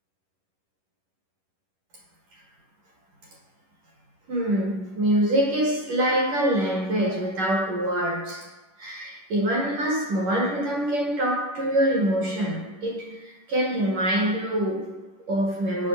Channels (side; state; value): left; late; 11 ms